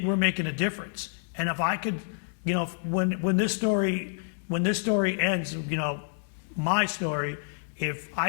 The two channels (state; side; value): silent; right; digital silence